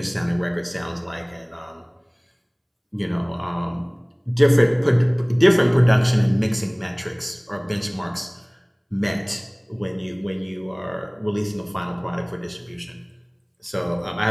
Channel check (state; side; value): identical; both; correlation 1.00